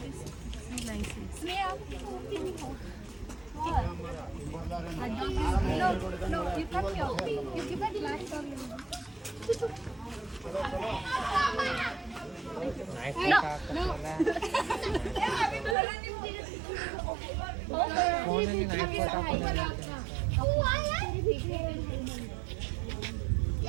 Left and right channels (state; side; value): drops out; left; at 15.8 s